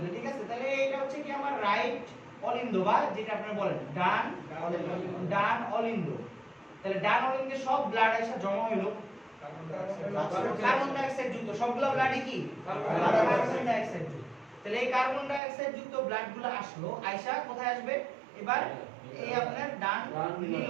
ঠিক আছে? তাহলে এটা হচ্ছে কি আমার রাইট অলিন্দ বা যেটা আপনারা বলেন ডান অলিন্দ। তাহলে ডান অলিন্দে সব ব্লাড এসে জমা হইলো কার্বন ডাই অক্সাইড যুক্ত, সবগুলো ব্লাডই কি কার্বন ডাই অক্সাইড যুক্ত। তাহলে এই কার্বন ডাই অক্সাইড যুক্ত ব্লাডগুলো আসলো, আয়সা কোথায় আসবে? এবার এই আপনার ডান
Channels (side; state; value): left; drops out; at 15.4 s